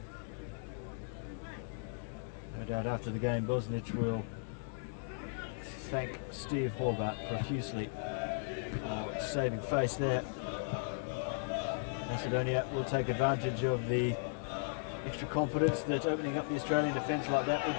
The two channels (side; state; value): right; silent; digital silence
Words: No doubt after the game Bosnic will thank Steve Horvat profusely for saving face there. Macedonia will take advantage of the extra confidence that opening up the Australian defence like that will